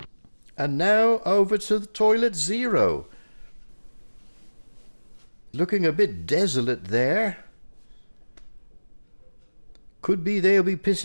And now over to the toilet zero. Looking a bit desolate there. Could be they'll be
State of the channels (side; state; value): both; inverted; correlation -1.00